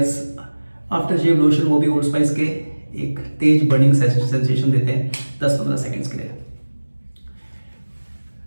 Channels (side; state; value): both; inverted; correlation -1.00